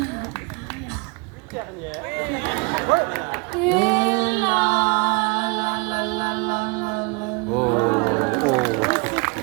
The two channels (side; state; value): left; quieter; 30.2 dB